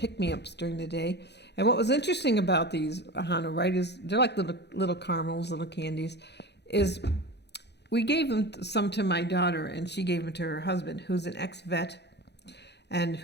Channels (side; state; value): right; late; 0.49 ms